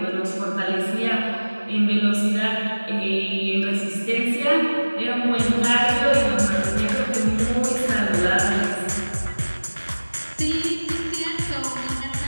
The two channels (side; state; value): both; inverted; correlation -1.00